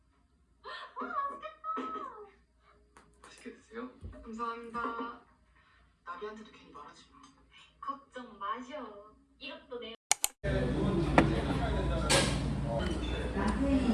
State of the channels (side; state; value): both; identical; correlation 1.00